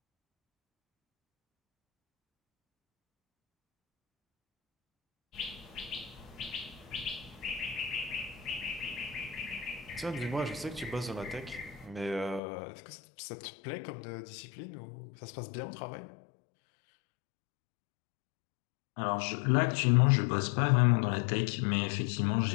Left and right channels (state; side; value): drops out; right; at 12.4 s